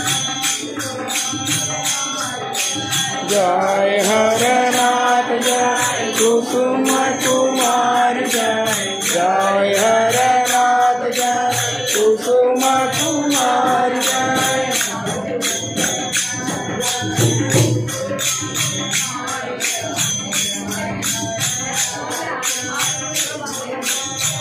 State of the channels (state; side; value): identical; both; correlation 1.00